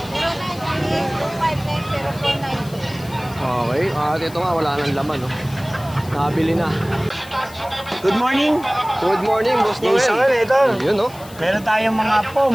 0938-259-0492. Okay, at ito nga, wala nang laman, oh. Nabili na. Good morning. Good morning, Boss Noel. Jason, ito. Yun, no? Meron tayong mga pom.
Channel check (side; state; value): left; noise; hiss, 20 dB below the sound